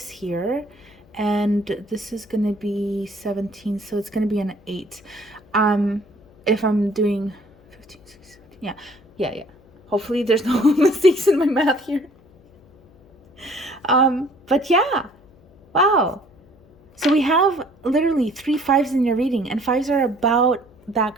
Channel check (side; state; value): left; noise; hum, 28 dB below the sound